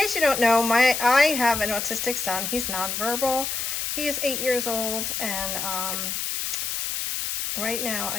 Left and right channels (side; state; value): left; noise; hiss, 2 dB below the sound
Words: you don't know, I have an autistic son. He's nonverbal. He is 8 years old, and right now